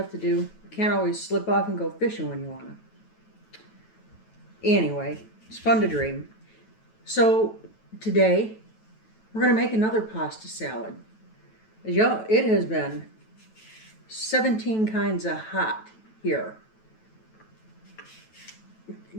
to do. Can't always slip off and go fishing when you want to. Anyway, it's fun to dream. So today we're going to make another pasta salad. Y'all, it has been 17 kinds of hot here.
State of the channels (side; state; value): right; late; 9.2 ms